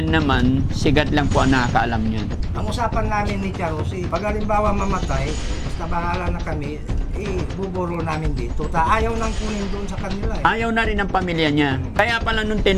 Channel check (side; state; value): both; identical; correlation 1.00